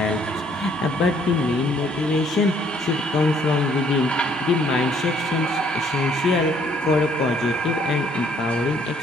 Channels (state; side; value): normal; both; correlation 0.64